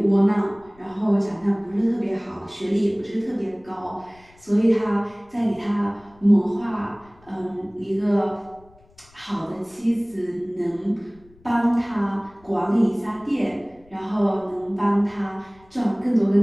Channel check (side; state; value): left; noise; rumble, 28 dB below the sound